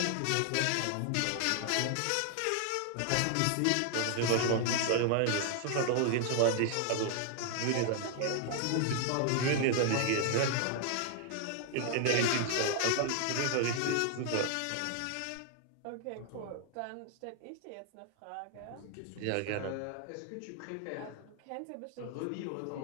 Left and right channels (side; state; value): both; different; correlation 0.00